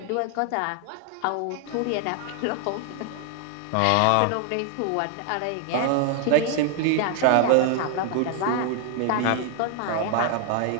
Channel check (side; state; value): both; different; correlation 0.00